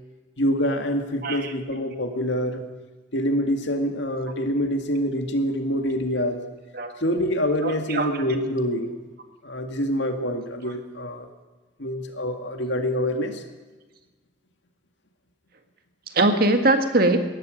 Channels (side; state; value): both; normal; correlation 0.20